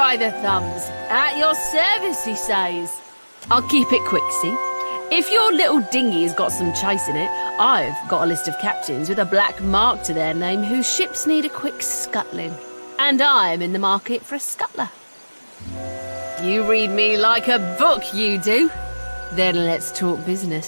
the thumbs. At your service, he says. I'll keep it quick, see? If your little dinghy has got some chase in it, I've got a list of captains with a black mark to their name whose ships need a quick scuttling. And I'm in the market for a scuttler. You read me like a book, you do. Then let's talk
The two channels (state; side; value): inverted; both; correlation -1.00